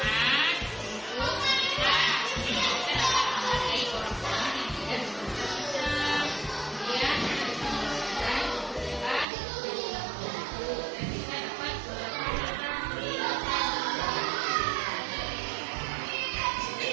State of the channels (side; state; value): left; drops out; at 9.2 s